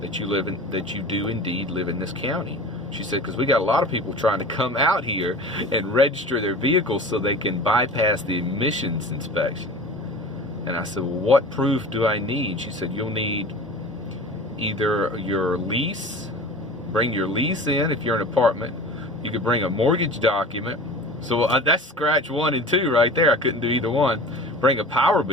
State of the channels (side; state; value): both; normal; correlation 0.38